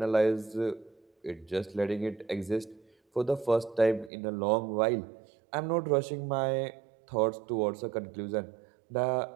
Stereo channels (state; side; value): drops out; left; at 4.1 s